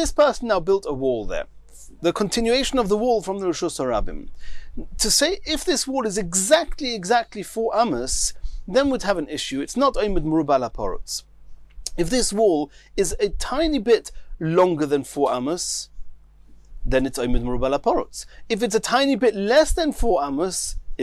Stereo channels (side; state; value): both; identical; correlation 1.00